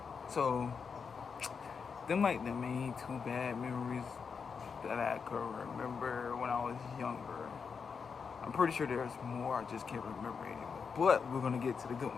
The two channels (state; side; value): quieter; right; 5.8 dB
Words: So them like the main 2 bad memories that I could remember when I was younger. I'm pretty sure there's more, I just can't remember anymore. But we're gonna get to the good